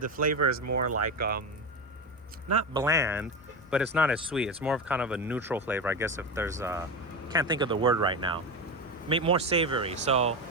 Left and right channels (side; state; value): both; normal; correlation 0.19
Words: flavor is more like not bland, but it's not as sweet. It's more of kind of a neutral flavor, I guess, if there's can't think of the word right now. More savory. So